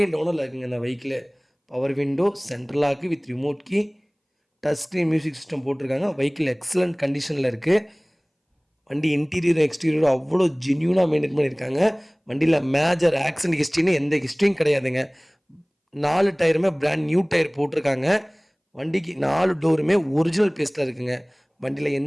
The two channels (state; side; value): identical; both; correlation 1.00